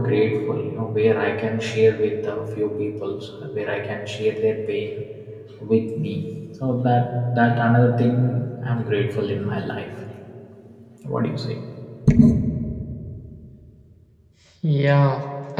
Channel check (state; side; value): identical; both; correlation 1.00